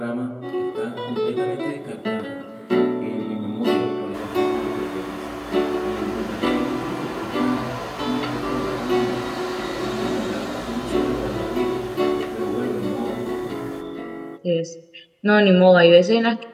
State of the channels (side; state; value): both; identical; correlation 1.00